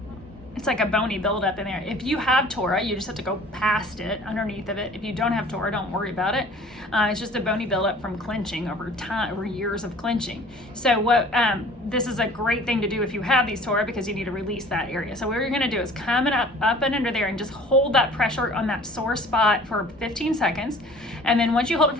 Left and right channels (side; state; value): both; normal; correlation 0.48